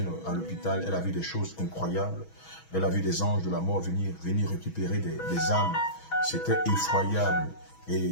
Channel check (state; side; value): late; right; 6.2 ms